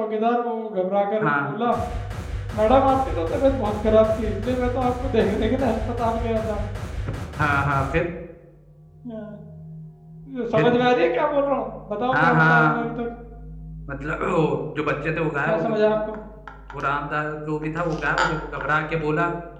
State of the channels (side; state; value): both; identical; correlation 1.00